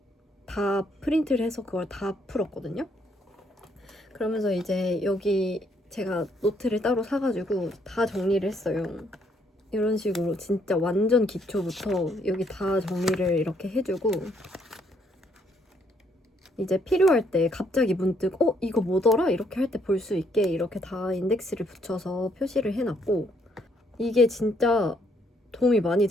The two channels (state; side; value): normal; both; correlation 0.70